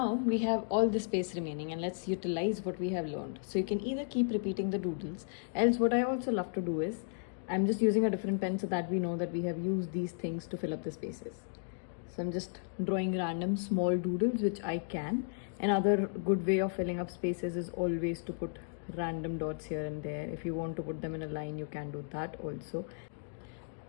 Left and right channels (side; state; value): right; silent; digital silence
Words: we have all the space remaining, and let's utilize what we have learned. So you can either keep repeating the doodles, else what I also love to do is, I'm just using a different pen so that we know that we have used these things to fill up the spaces. So I'm just drawing random small doodles which I can. Another good way of filling up spaces is always to put random dots here and there. If you want to put them in a line, you can do that also.